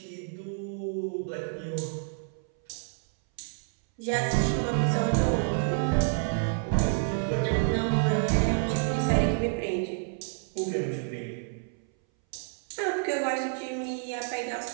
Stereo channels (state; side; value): silent; left; 59 dB below the other